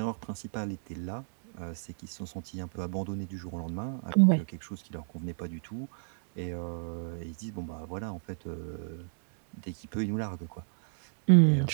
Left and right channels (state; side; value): silent; left; digital silence